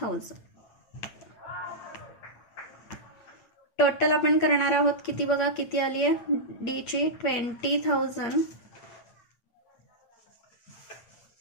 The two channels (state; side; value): late; right; 8.6 ms